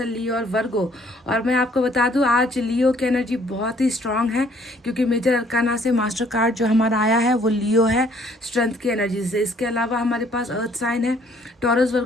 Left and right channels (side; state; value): both; normal; correlation 0.61